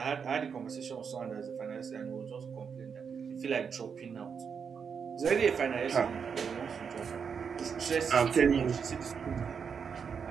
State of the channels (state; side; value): quieter; left; 6.5 dB